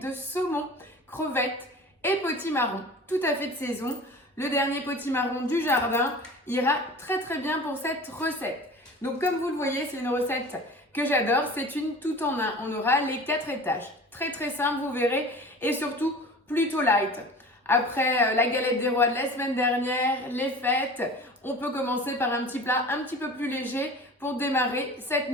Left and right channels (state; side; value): normal; both; correlation 0.39